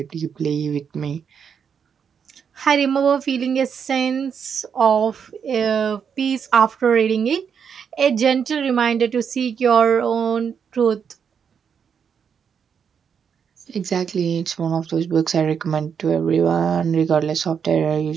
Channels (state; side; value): quieter; left; 7.1 dB